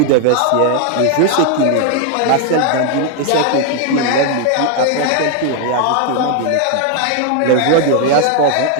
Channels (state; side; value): different; both; correlation 0.00